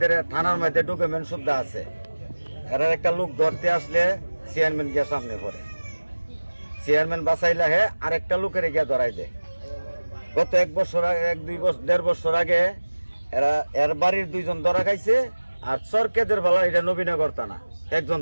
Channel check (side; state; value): both; inverted; correlation -1.00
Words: থানার মধ্যে ডকুমেন্ট সুদ্ধা আছে। এরা একটা লোক ধরতে আসলে চেয়ারম্যান গিয়ে সামনে পড়ে, চেয়ারম্যান বাঁচাইলে হে আরেকটা লোকের গিয়ে ধরাই দেয়। গত 1-2 বছর আগে এর বাড়ির 2 জন ধরা খাইছে, আর চরকেদের বেলা এটা নবীনগর থানা 1 জন